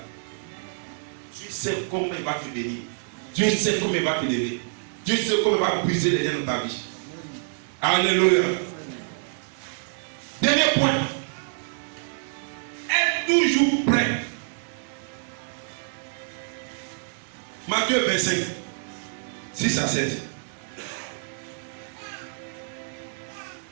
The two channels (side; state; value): left; silent; digital silence